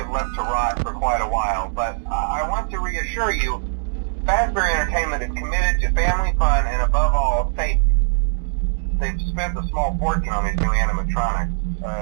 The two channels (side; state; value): left; silent; digital silence